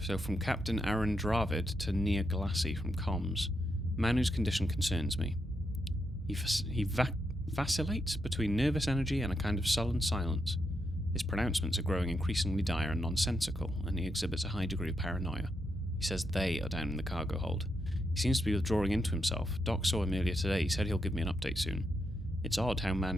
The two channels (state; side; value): normal; both; correlation 0.83